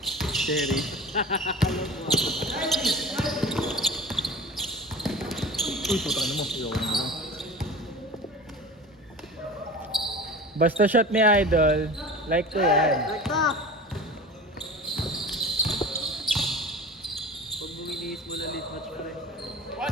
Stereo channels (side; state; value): both; normal; correlation 0.35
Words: Cherry. Uy, putang na mo. Ayoko na mo. Basta shot ni Idol, like ko yan. Rekta! Pag buminis mo na late match pa rin.